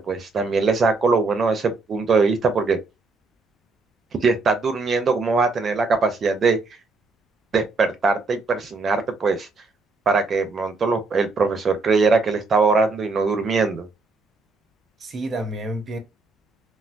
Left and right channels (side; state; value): left; quieter; 3.8 dB